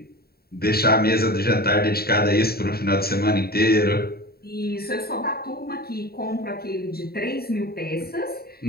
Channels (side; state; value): right; late; 0.45 ms